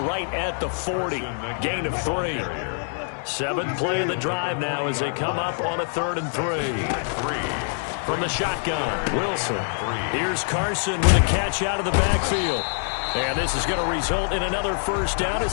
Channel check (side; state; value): right; silent; 62 dB below the other